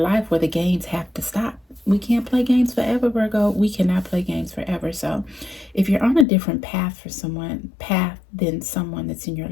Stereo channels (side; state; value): right; drops out; at 6.2 s